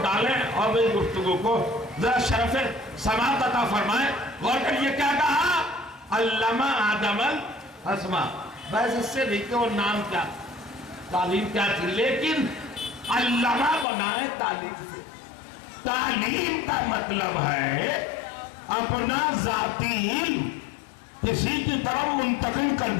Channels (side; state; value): right; drops out; at 13.9 s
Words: ڈالیں اور میری گفتگو کو ذرا شرف سماعت عطا فرمائیں۔ غور کریے کیا کہا؟ علم آدم الاسماء، بس اس سے نہیں کہ وہ نام کیا، تعلیم کیا تھی، لیکن علمہ بنائے تعلیم سے۔ تعلیم کا مطلب ہے اپنا ذاتی علم کسی کی طرف منتقل کر